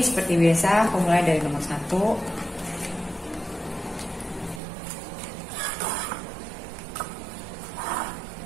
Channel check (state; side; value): drops out; left; at 4.6 s